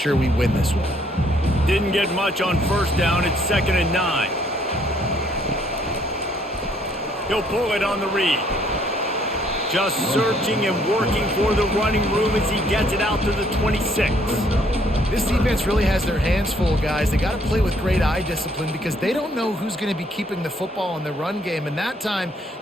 we win this one? Didn't get much on 1st down. It's 2nd and 9. He'll pull it on the read. Just searching and working for the running room as he gets it out to the 26. This defense really has their hands full, guys. They got to play with great eye discipline because they don't know who's going to be keeping the football in the run game. And that time,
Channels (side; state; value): both; normal; correlation 0.66